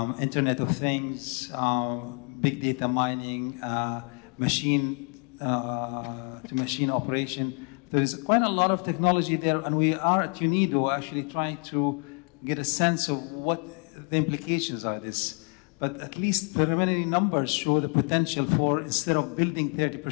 Internet of Things, big data mining, machine-to-machine operation. There is quite a lot of technology there, and we are at UNIDO actually trying to get a sense of what the implications are of this. But at least preliminary numbers show the potential for, instead of building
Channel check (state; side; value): quieter; right; 39.3 dB